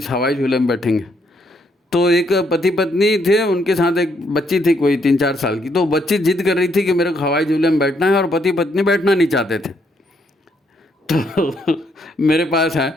हवाई झूले में बैठेंगे। तो एक पति पत्नी थे, उनके साथ एक बच्ची थी कोई 3-4 साल की। तो बच्ची जिद कर रही थी कि मेरे को हवाई झूले में बैठना है, और पति पत्नी बैठना नहीं चाहते थे। तो मेरे पास है,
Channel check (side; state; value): both; normal; correlation 0.73